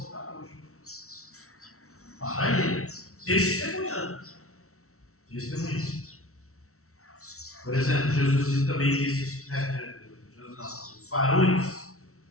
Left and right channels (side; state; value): right; late; 0.63 ms